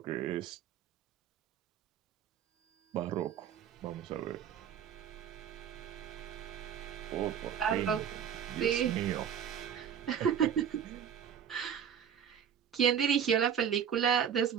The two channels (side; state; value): left; quieter; 8.5 dB